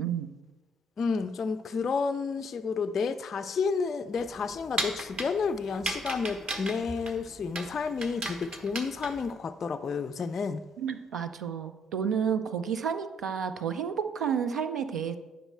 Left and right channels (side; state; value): both; normal; correlation 0.66